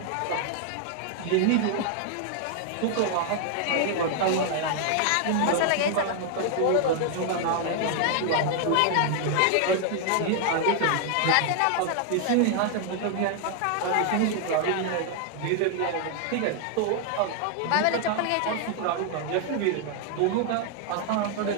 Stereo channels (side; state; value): both; different; correlation 0.00